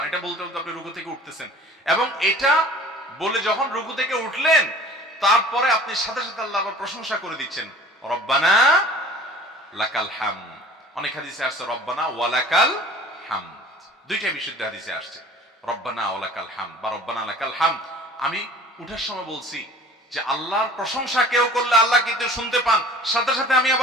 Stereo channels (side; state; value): both; normal; correlation 0.45